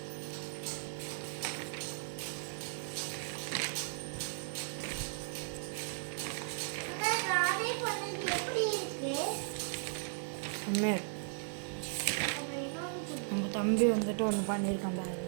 நம்ம தம்பி வந்துட்டு ஒன்று பண்ணியிருக்கான் பாருங்க.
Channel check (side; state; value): left; silent; digital silence